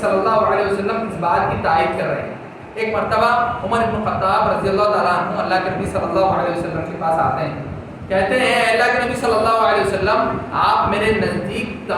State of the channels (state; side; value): identical; both; correlation 1.00